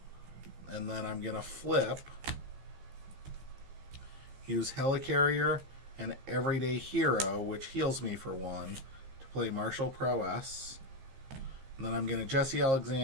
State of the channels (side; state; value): left; late; 15 ms